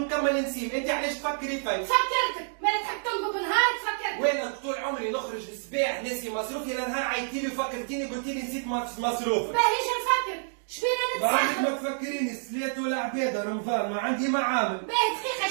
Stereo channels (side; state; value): left; silent; digital silence